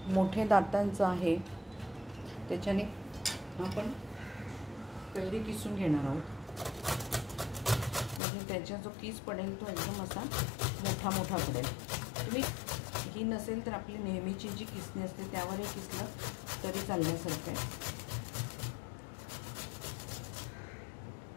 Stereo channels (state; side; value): drops out; right; at 8.2 s